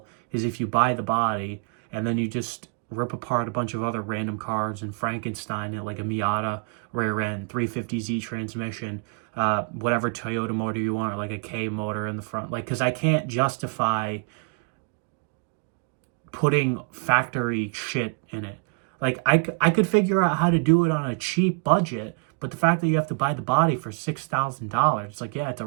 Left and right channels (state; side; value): quieter; left; 36.3 dB